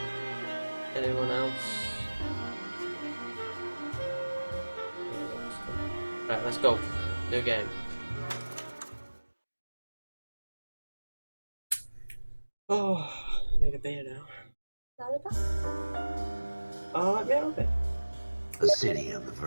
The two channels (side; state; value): both; inverted; correlation -1.00